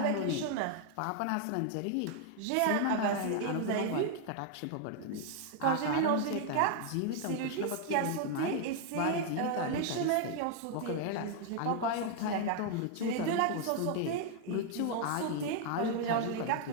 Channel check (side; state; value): both; different; correlation 0.00